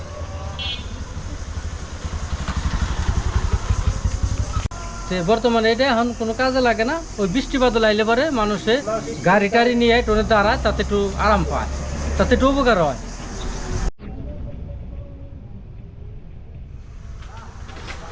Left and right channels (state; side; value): identical; both; correlation 1.00